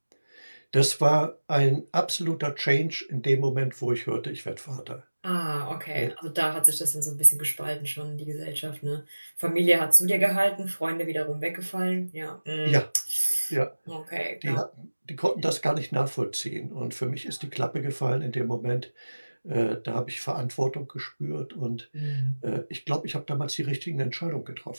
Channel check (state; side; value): inverted; both; correlation -1.00